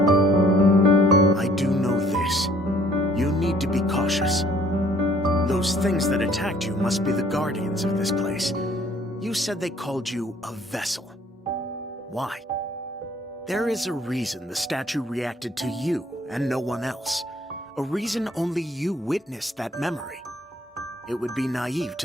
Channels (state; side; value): normal; both; correlation 0.59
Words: I do know this. You need to be cautious. Those things that attacked you must be the guardians of this place. You said they called you a vessel. Why? There is a reason the statue reacted to you and no one else. A reason only you witnessed that memory. It would be naive